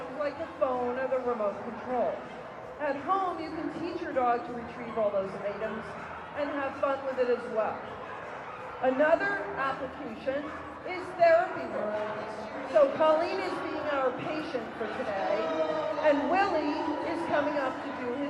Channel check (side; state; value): both; identical; correlation 1.00